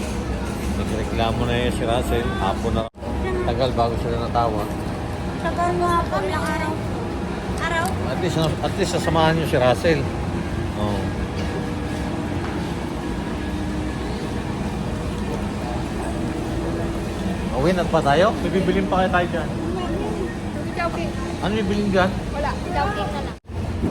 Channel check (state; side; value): identical; both; correlation 1.00